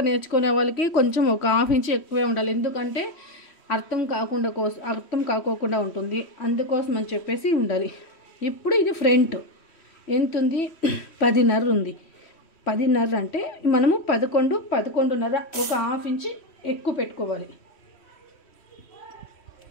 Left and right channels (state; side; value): late; right; 3.1 ms